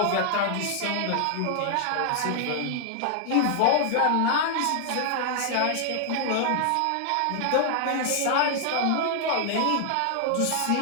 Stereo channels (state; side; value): different; both; correlation 0.00